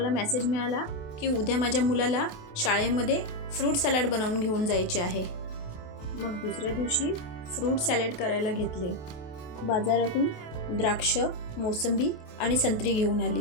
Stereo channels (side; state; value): right; late; 28 ms